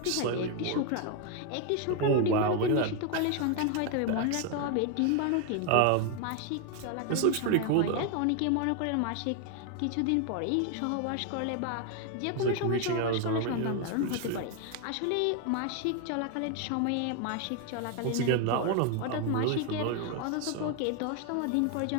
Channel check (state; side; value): different; both; correlation 0.01